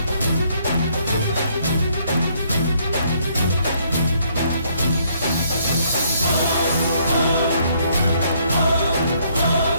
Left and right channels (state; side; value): inverted; both; correlation -0.68